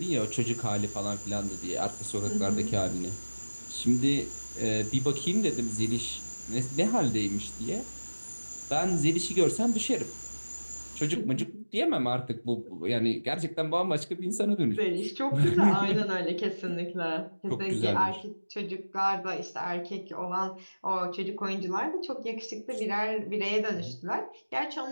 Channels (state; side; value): inverted; both; correlation -1.00